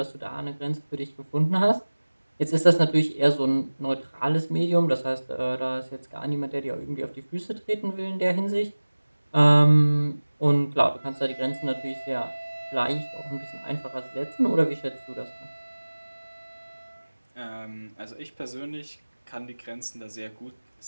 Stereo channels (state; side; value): inverted; both; correlation -1.00